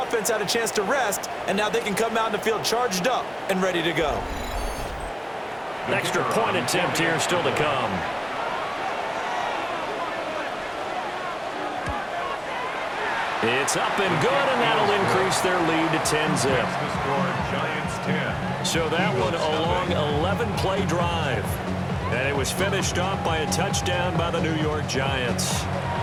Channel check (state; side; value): identical; both; correlation 1.00